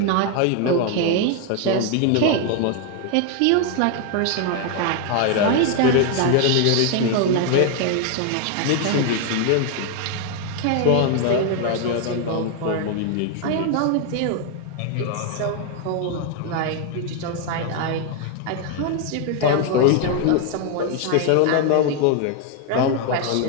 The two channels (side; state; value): both; different; correlation 0.01